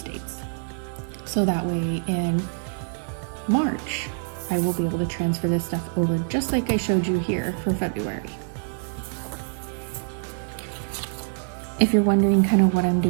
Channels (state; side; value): silent; left; 60 dB below the other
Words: dates. So that way in March, I will be able to transfer this stuff over just like I showed you here for February. If you're wondering kind of what I'm